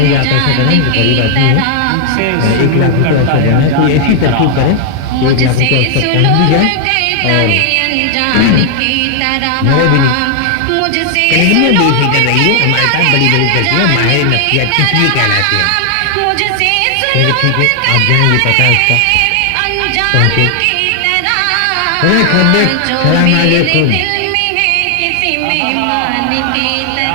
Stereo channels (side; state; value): both; different; correlation 0.00